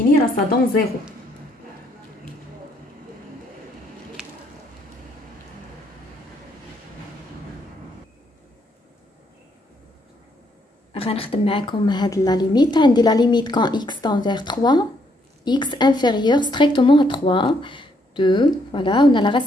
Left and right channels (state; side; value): normal; both; correlation 0.72